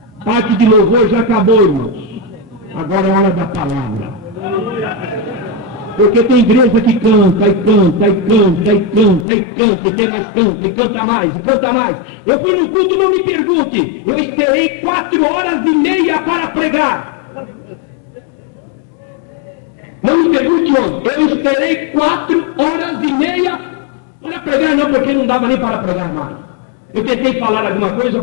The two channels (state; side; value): drops out; right; at 9.2 s